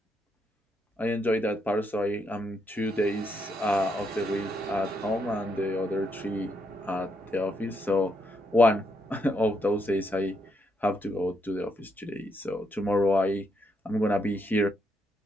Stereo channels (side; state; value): both; normal; correlation 0.77